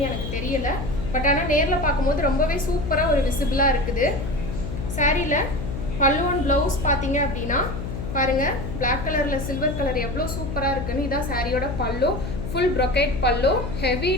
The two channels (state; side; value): noise; left; hum, 6 dB below the sound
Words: எனக்கு தெரியல. பட் ஆனால் நேரில் பார்க்கும்போது ரொம்பவே சூப்பராக ஒரு விசிபிளாக இருக்குது. சாரியில பல்லு அண்ட் பிளவுஸ் பார்த்தீங்க அப்படின்னா பாருங்க, பிளாக் கலர்ல சில்வர் கலர் எவ்வளோ சூப்பராக இருக்குன்னு. இதான் சாரியோட பல்லு. ஃபுல் brocade பல்லு, ஹெவி